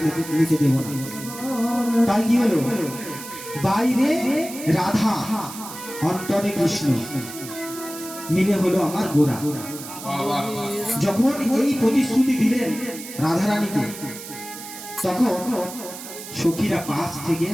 নিতে দেবো না। তাই কি হলো? বাইরে রাধা, অন্তরে কৃষ্ণ মিলে হলো আমার গোরা। যখন এই প্রতিশ্রুতি দিলেন রাধারানীকে, তখন সখীরা পাশ থেকে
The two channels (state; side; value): noise; right; hiss, 12 dB below the sound